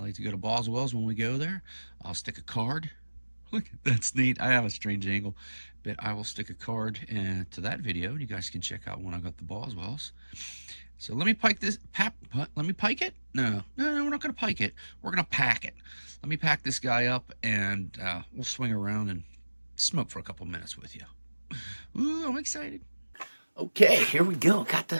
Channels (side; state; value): both; inverted; correlation -1.00